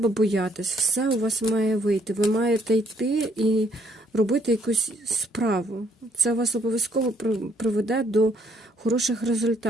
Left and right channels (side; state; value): both; normal; correlation 0.68